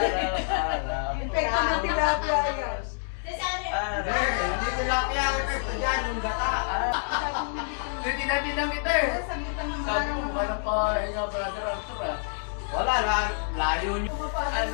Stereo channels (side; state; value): right; silent; 60 dB below the other